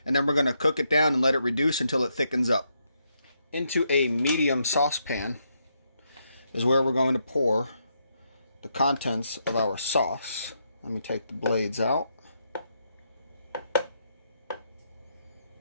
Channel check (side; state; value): both; inverted; correlation -0.79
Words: And then we're going to cook it down and let it reduce until it thickens up. Into a medium saucepan is where we're going to pour the contents of our sauce. Let me take the blades out.